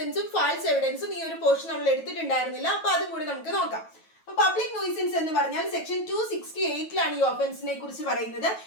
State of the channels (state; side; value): late; right; 9.2 ms